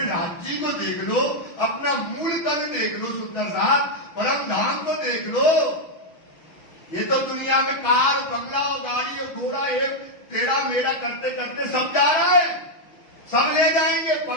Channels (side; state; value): right; late; 6.5 ms